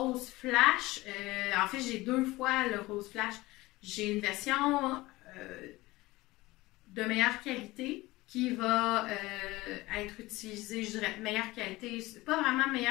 flash. En fait, j'ai 2 fois le rose flash. J'ai une version de meilleure qualité qui va être utilisée, je dirais meilleure qualité. C'est pas vraiment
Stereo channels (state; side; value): quieter; right; 19.8 dB